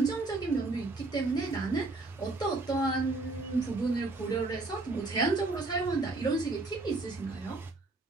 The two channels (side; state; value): left; quieter; 3.3 dB